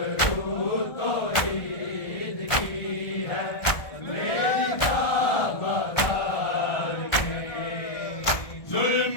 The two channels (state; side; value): late; right; 1.3 ms